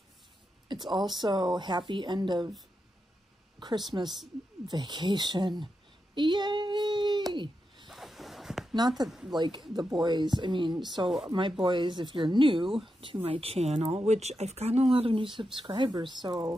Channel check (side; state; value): both; normal; correlation 0.87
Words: It's also happy end of Christmas vacation. Yay! Not that, like, the boys, I mean, so my boys, if you're new to my channel, which I've gotten a lot of new subscribers,